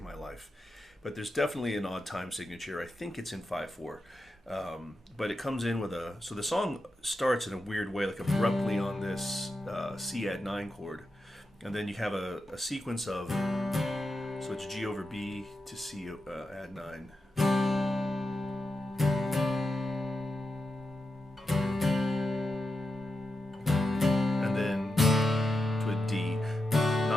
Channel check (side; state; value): both; normal; correlation 0.89